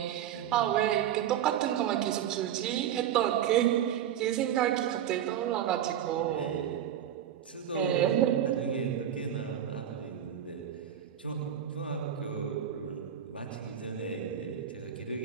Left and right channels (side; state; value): left; quieter; 10.0 dB